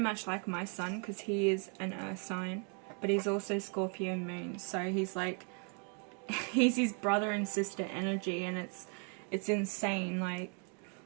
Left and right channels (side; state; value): left; quieter; 39.0 dB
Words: like my son, because he is an earth sign. But he's also Scorpio moon. So he's like, he's his brother and sister energy. And it's insane. Like,